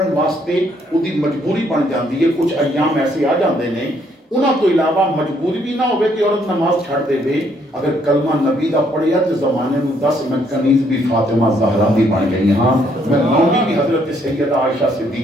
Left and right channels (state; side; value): normal; both; correlation 0.69